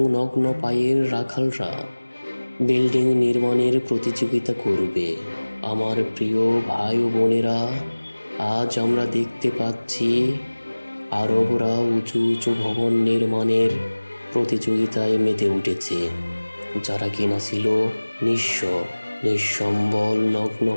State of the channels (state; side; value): inverted; both; correlation -1.00